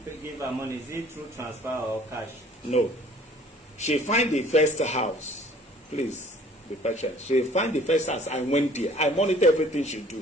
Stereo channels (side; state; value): both; normal; correlation 0.53